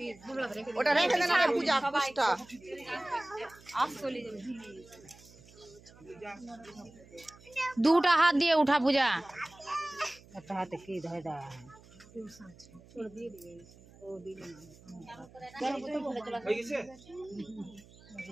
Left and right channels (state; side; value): noise; right; hum, 23 dB below the sound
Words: ওটা রেখে দেন আগে পূজা পুষ্টা দুটা হাত দিয়ে উঠা পূজা। একটা হাতে কি ধরে দেওয়া হয়ে গেছে।